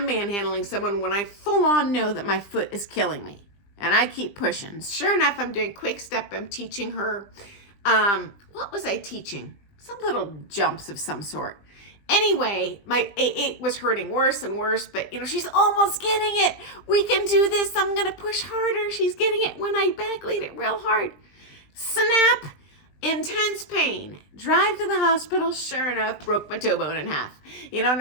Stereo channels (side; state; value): right; late; 20 ms